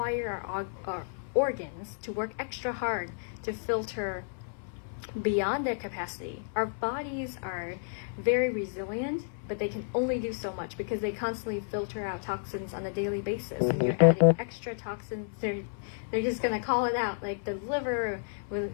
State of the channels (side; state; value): right; silent; 57 dB below the other